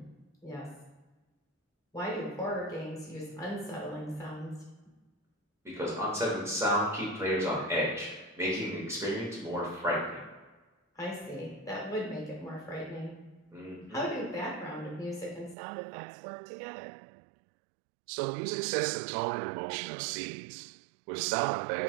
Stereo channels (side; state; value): left; drops out; at 15.6 s